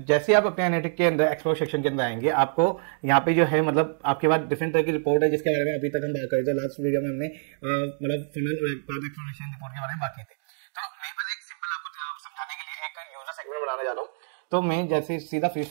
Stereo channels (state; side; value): silent; left; digital silence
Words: जैसे आप अपने एनालिटिक के अंदर एक्सप्लोर सेक्शन के अंदर आएंगे, आपको यहाँ पे जो है मतलब आपके पास डिफरेंट तरह की रिपोर्ट है, जिसके बारे में अभी तक हम बात कर रहे थे। लास्ट वीडियो में हमने मतलब फनल और एक्सप्लोरेशन रिपोर्ट के बारे में बात की थी। सेगमेंट बनाने जा रहा हूँ, तो मैं जैसे सीधा फ्री